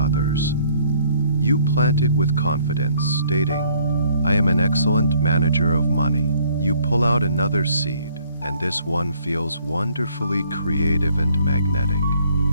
You plant it with confidence, stating, I am an excellent manager of money. You pull out another seed, and this one feels wonderfully creative and magnetic.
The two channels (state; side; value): inverted; both; correlation -0.62